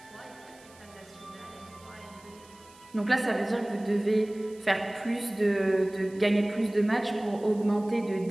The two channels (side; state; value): right; noise; hiss, 25 dB below the sound